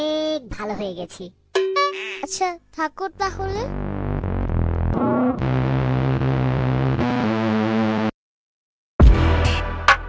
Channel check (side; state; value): both; identical; correlation 1.00